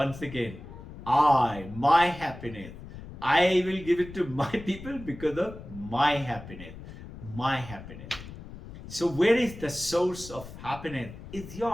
again, my happiness. I will give it to my people because of my happiness. My happiness. So where is the source of happiness? It's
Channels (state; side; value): noise; left; rumble, 14 dB below the sound